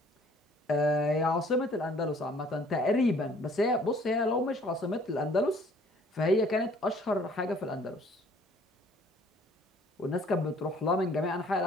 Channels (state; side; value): normal; both; correlation 0.58